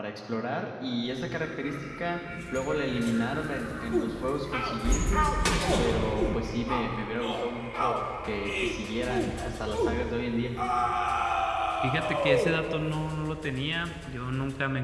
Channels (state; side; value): identical; both; correlation 1.00